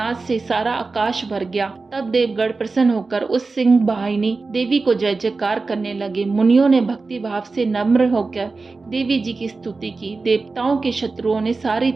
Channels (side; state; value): left; quieter; 3.9 dB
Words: से सारा आकाश भर गया। तब देवगण प्रसन्न होकर उस सिंह वाहिनी देवी को जय जयकार करने लगे। मुनियों ने भक्ति भाव से नम्र होकर देवी जी की स्तुति की। देवताओं के शत्रुओं ने सारी